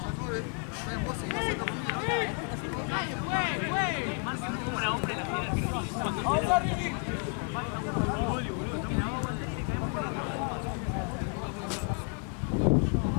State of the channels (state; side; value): quieter; right; 37.7 dB